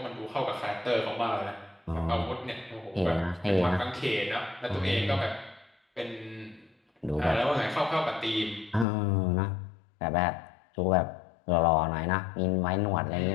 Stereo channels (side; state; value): right; drops out; at 8.8 s